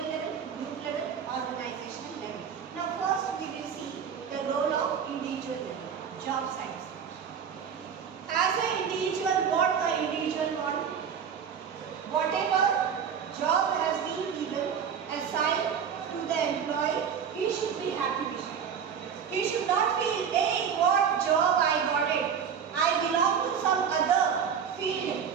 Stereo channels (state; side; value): quieter; left; 7.4 dB